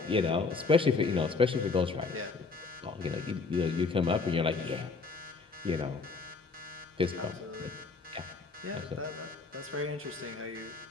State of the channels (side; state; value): right; quieter; 4.3 dB